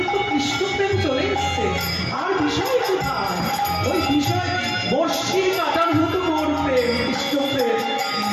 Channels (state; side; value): identical; both; correlation 1.00